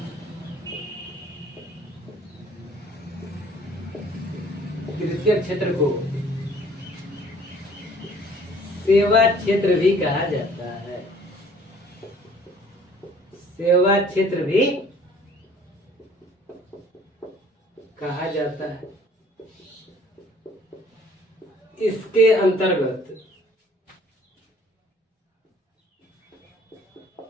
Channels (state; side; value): normal; both; correlation 0.55